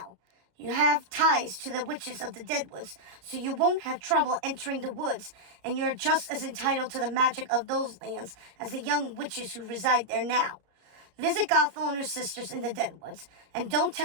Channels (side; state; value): left; late; 33 ms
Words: You have ties to the witches of the Deadwoods, so you won't have trouble entering the woods, and you're just as entitled to the magic of those lands as the young witches who reside there now. Visit Gothel and her sisters in the Deadwoods, and don't